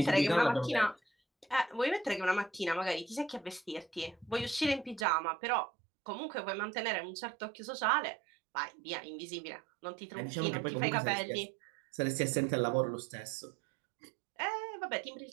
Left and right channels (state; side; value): drops out; left; at 5.1 s